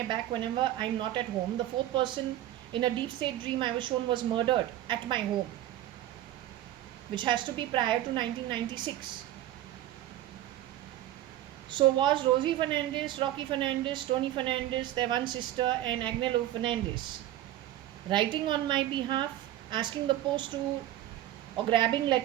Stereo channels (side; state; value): left; quieter; 13.5 dB